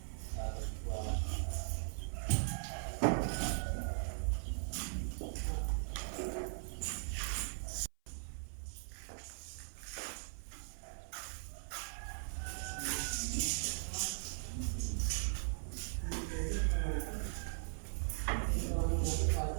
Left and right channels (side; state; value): left; silent; 51 dB below the other